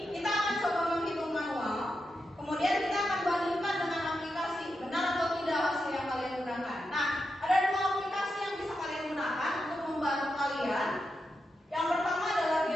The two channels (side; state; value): both; normal; correlation 0.87